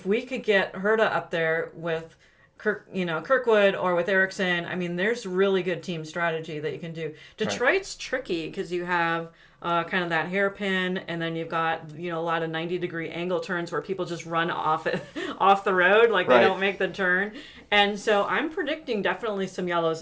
we could get Herta up there with Kirkwood or with Ericsson, I mean, there's really good team strategy that you can do. Detroit's tricky because you have kind of that hairpin, and then you've got a lot of 90-degree angle turns where people just run off the road, like they don't make the turn. And so I'm predicting definitely some yellows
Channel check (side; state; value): both; identical; correlation 1.00